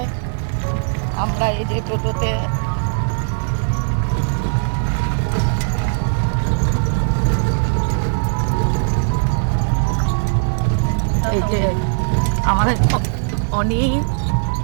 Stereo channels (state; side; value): silent; left; 67 dB below the other